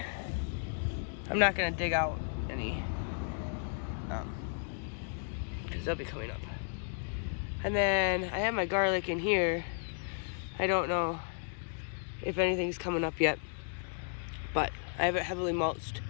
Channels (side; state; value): right; silent; digital silence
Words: I'm not gonna dig out any because they'll be coming up. And then I have my garlic in here. I don't know if anything's coming up yet, but I have it heavily mulched,